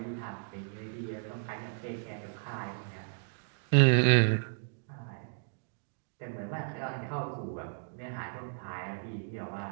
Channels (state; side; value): silent; left; digital silence